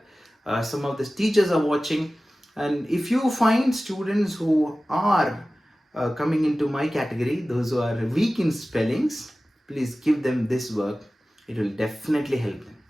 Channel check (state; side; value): normal; both; correlation 0.96